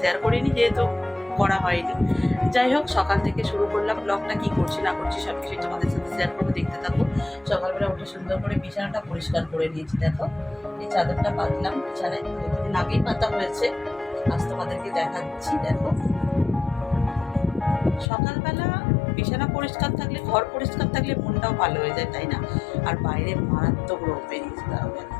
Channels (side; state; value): right; drops out; at 18.1 s